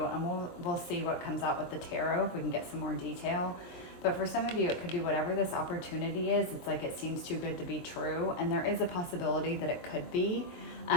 and we'll see what comes out with the tarot if we can get some more detail. But for some of you, it could be whatever this opportunity is. It's like it seems too good to be true, and there is a possibility that it could be.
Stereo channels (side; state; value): right; late; 22 ms